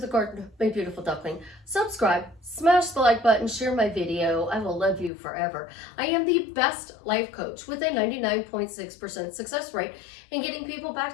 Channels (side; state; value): right; drops out; at 5.1 s